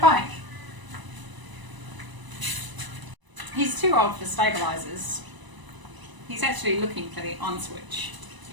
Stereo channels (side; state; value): left; late; 1.0 ms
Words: bike. He's too old for stabilisers. He's actually looking for the on switch.